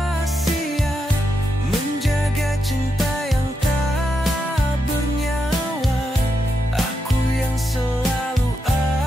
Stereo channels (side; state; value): both; normal; correlation 0.84